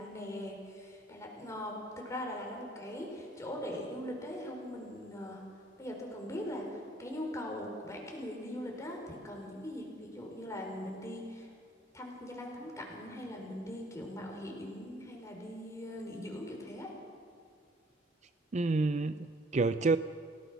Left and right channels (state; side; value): normal; both; correlation 0.59